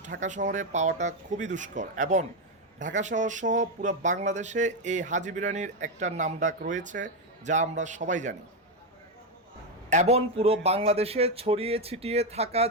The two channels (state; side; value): normal; both; correlation 0.07